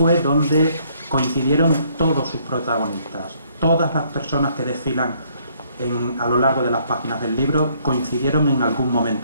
donde coincidieron todos sus protagonistas. Todas las personas que desfilan a lo largo de las páginas del libro coincidieron en algún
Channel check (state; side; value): inverted; both; correlation -0.66